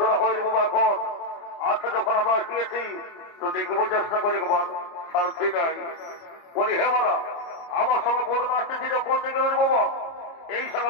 হয়নি বাবা এখন। আচ্ছা যখন আমরা আসিয়েছি তো দেখবো চেষ্টা করে শান্তি নাই বলি হে বাবা আমার সঙ্গে বদনা আসতেছিল কোন দিকে রে বাবা এই সঙ্গে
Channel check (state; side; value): late; right; 29 ms